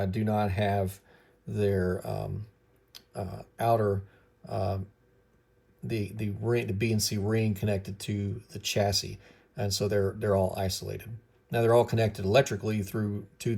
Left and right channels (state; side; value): identical; both; correlation 1.00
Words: do not have their outer the BNC ring connected to the chassis, and so they're all isolated. Now they're all connected electrically through to